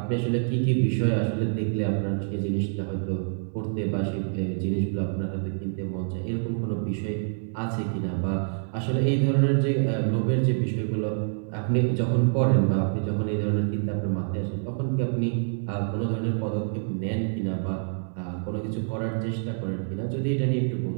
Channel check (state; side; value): silent; left; digital silence